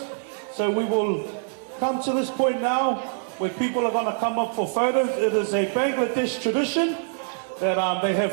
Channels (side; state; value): left; silent; 58 dB below the other